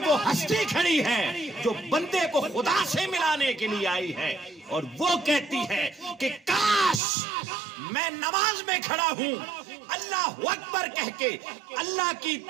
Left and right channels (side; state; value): left; drops out; at 7.0 s